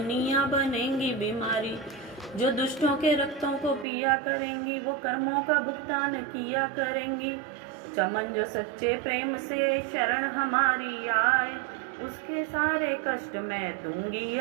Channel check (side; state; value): left; drops out; at 3.9 s